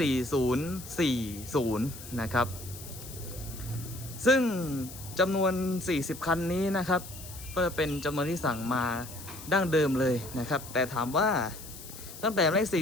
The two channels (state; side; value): noise; left; hiss, 14 dB below the sound